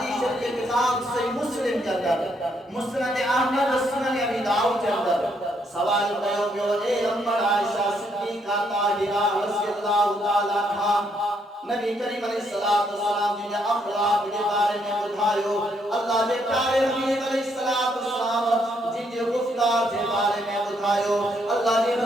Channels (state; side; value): normal; both; correlation 0.73